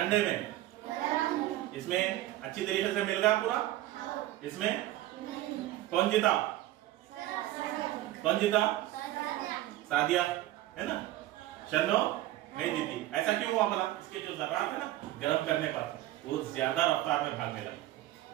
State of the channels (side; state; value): left; quieter; 15.4 dB